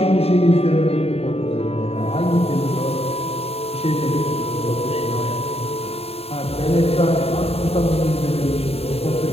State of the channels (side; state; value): right; late; 0.29 ms